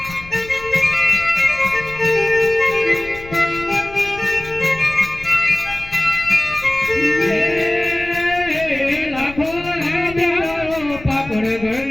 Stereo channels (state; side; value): noise; left; rumble, 17 dB below the sound